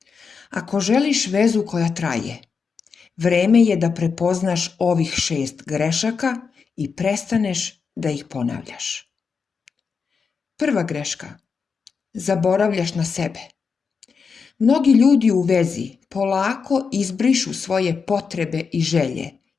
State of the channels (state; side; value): quieter; right; 5.5 dB